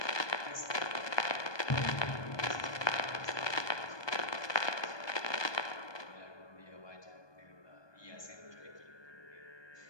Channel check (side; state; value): right; late; 1.2 ms